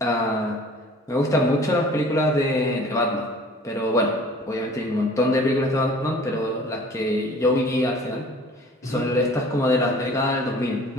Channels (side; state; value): both; normal; correlation 0.48